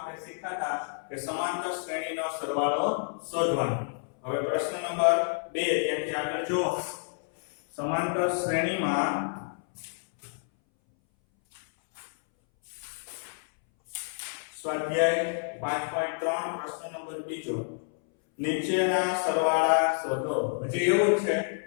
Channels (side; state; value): right; silent; 59 dB below the other